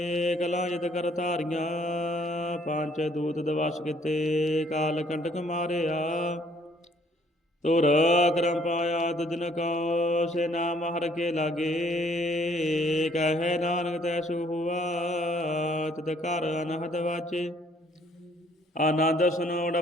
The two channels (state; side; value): normal; both; correlation 0.63